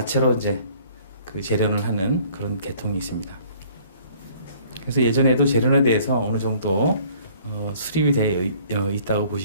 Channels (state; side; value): inverted; both; correlation -0.56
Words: 이제 재련을 하는 그런 계통이 있습니다. 그래서 예전에도 재련에 대해서 어느 정도 수립이 되어 있다고